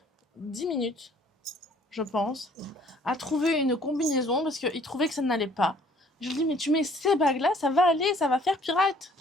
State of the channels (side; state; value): both; normal; correlation 0.58